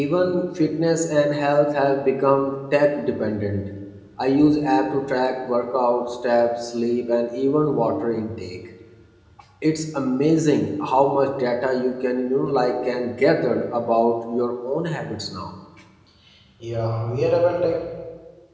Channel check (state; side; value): identical; both; correlation 1.00